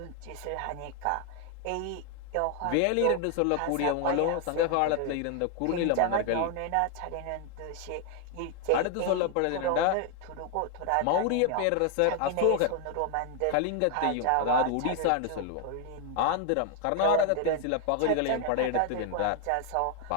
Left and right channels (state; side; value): different; both; correlation 0.00